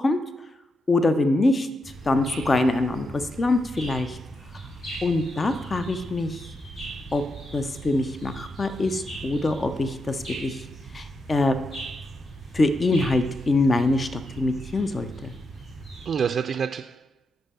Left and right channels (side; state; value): both; normal; correlation 0.84